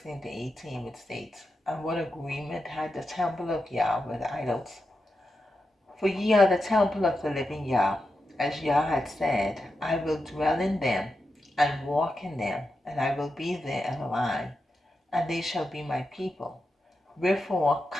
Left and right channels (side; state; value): both; normal; correlation 0.88